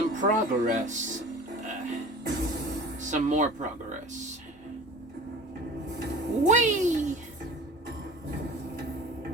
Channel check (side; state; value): both; normal; correlation 0.42